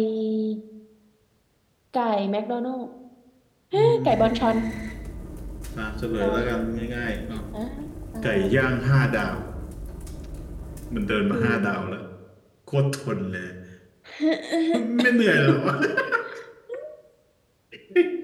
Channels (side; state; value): both; identical; correlation 1.00